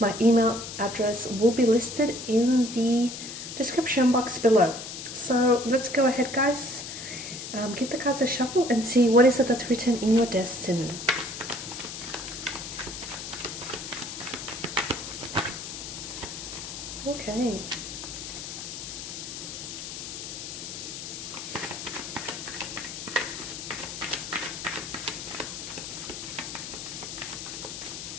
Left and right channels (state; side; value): noise; left; hiss, 8 dB below the sound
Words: email address will be listed in the description box below. So let's go ahead, guys. Give the cards a shuffle and see what is it that's written in your destiny. Okay.